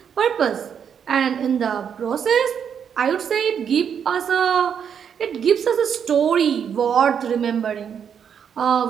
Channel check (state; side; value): quieter; left; 7.7 dB